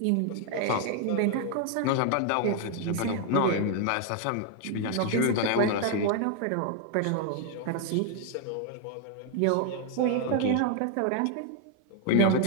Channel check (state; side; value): different; both; correlation 0.00